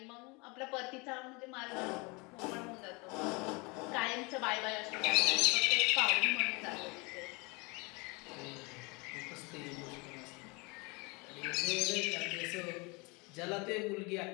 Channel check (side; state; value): right; quieter; 27.9 dB